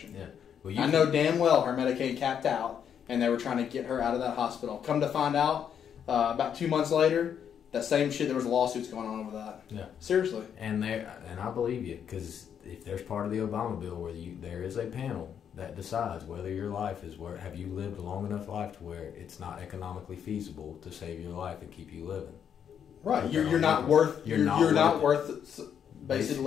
Yeah. Well, I know damn well her Medicaid capped out, and they were trying to get her out of that hospital. Come to find out, about 2 months later, that same shit, there was lawsuits going on over that. Yeah. Seriously. And I believe you, because if there's part of the Obama bill where there is a panel that decides whether your life is have you lived a long enough life to where it's not economically feasible to save your life and keep you living. Right. You're not worth. You're not worth. Basically,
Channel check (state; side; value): quieter; right; 8.3 dB